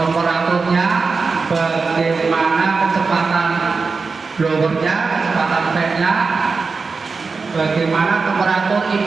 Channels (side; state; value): left; quieter; 4.5 dB